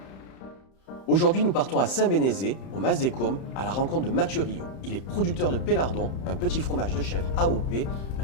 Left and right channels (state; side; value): late; right; 31 ms